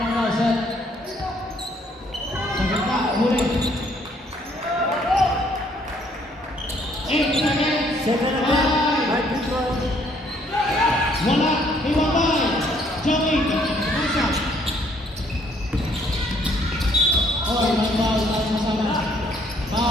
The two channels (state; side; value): normal; both; correlation 0.65